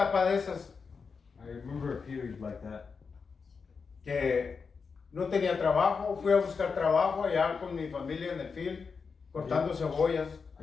de esas I remember a period like that. que no tenía trabajo, fui a buscar trabajo allá con mi familia en el field, cortando cebollas. I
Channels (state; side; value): quieter; right; 5.3 dB